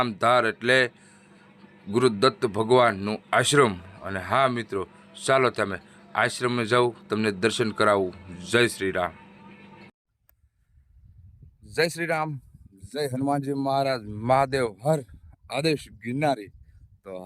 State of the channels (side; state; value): both; identical; correlation 1.00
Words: એટલે ગુરુ દત્ત ભગવાનનું આશ્રમ. અને હા મિત્રો, ચાલો તમે આશ્રમમાં જાઉં, તમને દર્શન કરાવું. જય શ્રી રામ. જય શ્રી રામ. જય હનુમાનજી મહારાજ. મહાદેવ હર. આદેશ ગિરનારી. તો